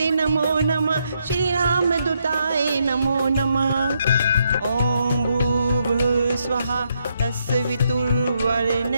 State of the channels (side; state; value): both; inverted; correlation -0.77